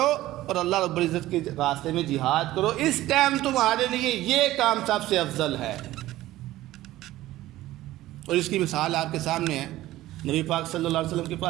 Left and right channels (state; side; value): quieter; left; 15.8 dB